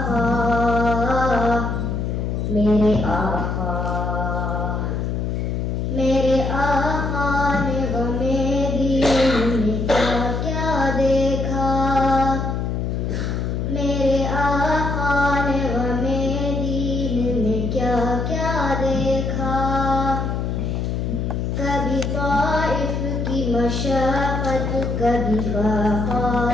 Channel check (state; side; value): noise; left; hum, 1 dB below the sound